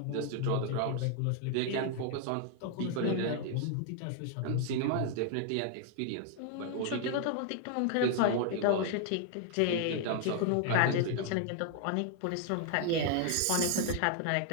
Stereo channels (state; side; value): different; both; correlation 0.00